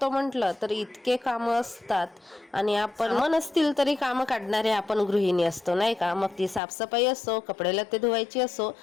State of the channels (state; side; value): drops out; right; at 6.6 s